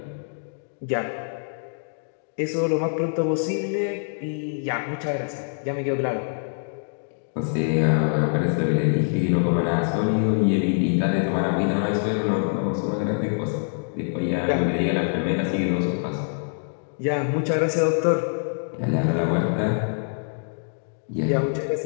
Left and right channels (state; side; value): silent; right; digital silence